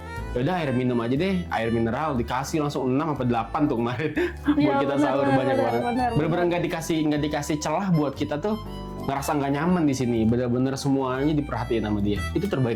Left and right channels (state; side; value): identical; both; correlation 1.00